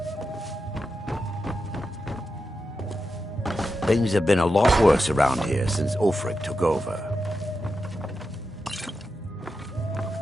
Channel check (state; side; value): normal; both; correlation 0.89